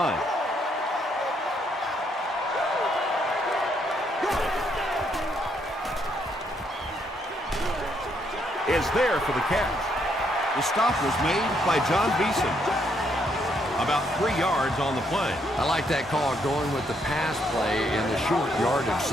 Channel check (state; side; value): normal; both; correlation 0.73